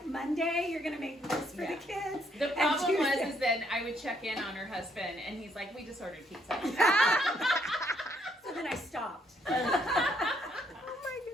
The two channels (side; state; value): both; normal; correlation 0.70